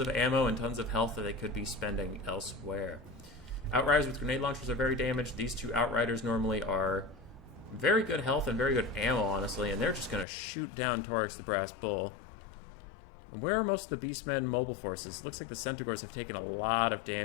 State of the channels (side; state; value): right; drops out; at 10.2 s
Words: ammo and tons of health that they could be spending elsewhere. Outriders with grenade launchers are very damaged. These 2 Outriders normally are very good health and very good ammo, honestly, and they're just going to shoot down Taurus the Brass Bull. Where are most of the Beastmen mobile forces? Looks like the Centaurs have taken a lot of